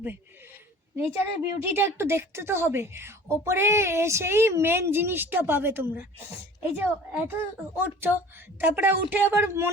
নেচারের বিউটিটা একটু দেখতে তো হবে। ওপরে এসেই মেন জিনিসটা পাবে তোমরা। এই যে এত উঠছো, তারপরে উঠে আবার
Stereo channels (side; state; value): both; normal; correlation 0.45